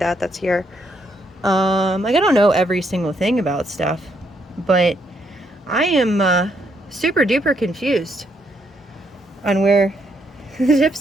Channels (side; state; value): both; normal; correlation 0.74